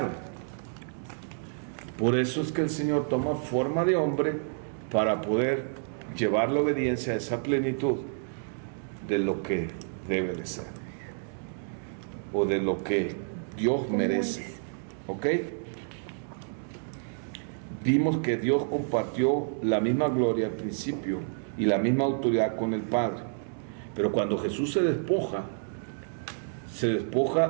Por eso es que el Señor toma forma de hombre para poder llevar la obediencia a esa plenitud de lo que debe de ser o de lo que Dios merece. ¿Ok? Vimos que Dios compartió la misma gloria al principio y la misma autoridad con el Padre, pero cuando Jesús se despoja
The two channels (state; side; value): silent; left; digital silence